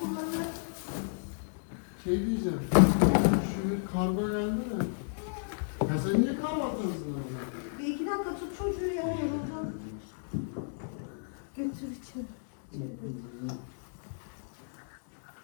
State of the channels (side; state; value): right; silent; digital silence